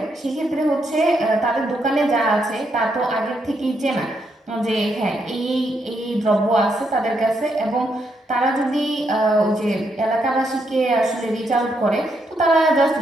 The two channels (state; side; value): normal; both; correlation 0.78